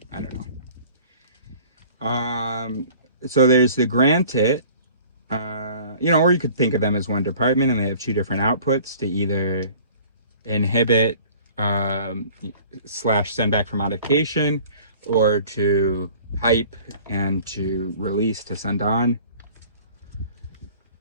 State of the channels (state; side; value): inverted; both; correlation -0.49